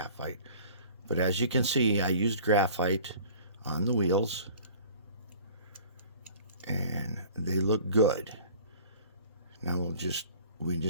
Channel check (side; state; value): both; inverted; correlation -0.47